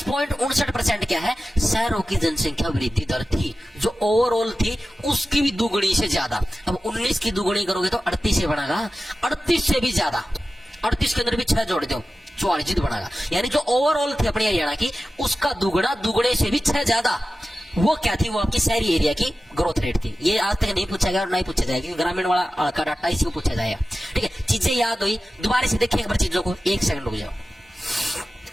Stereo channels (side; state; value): both; normal; correlation 0.94